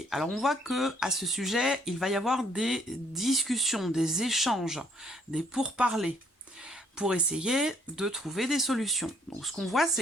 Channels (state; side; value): normal; both; correlation 0.65